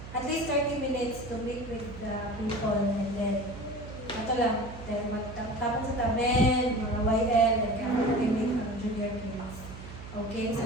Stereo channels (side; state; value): right; noise; hum, 13 dB below the sound